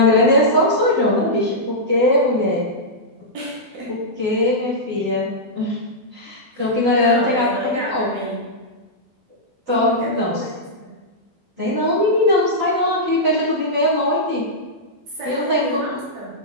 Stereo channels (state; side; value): late; left; 12 ms